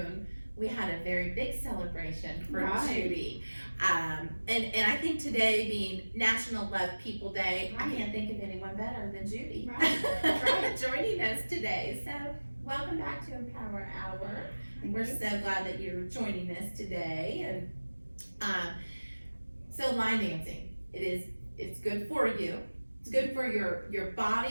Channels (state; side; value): inverted; both; correlation -1.00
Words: we had a very big celebration for Judy. And I think today being National Love People Day, I can't think of anyone better than Judy joining us today. So welcome back to Empower Hour. We're so glad that you're joining us today. And so line dancing, it's good for you. It's good for your